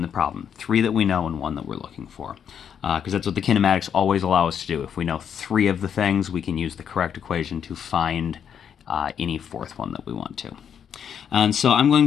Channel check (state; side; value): quieter; right; 8.1 dB